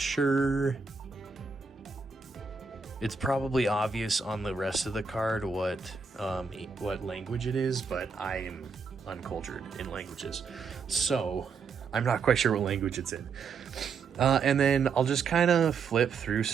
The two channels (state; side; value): quieter; left; 5.2 dB